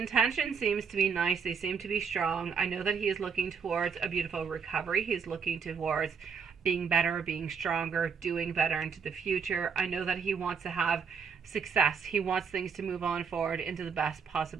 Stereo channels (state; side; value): quieter; left; 6.2 dB